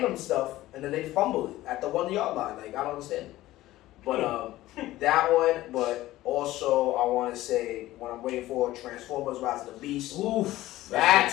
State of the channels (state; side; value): quieter; right; 16.1 dB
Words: them stuff and then they fumble it at the 1 yard line. Like I don't understand it. But that one. But also I want to say what I'm waiting for: Transformers: Rise of the Beast. Oof.